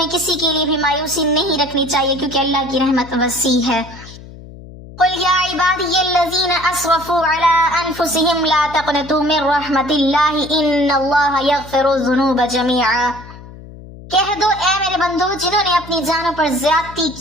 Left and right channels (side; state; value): left; noise; hum, 17 dB below the sound